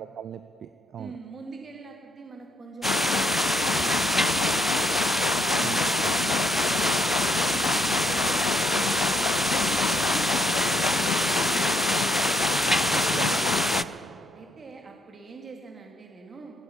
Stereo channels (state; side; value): normal; both; correlation 0.74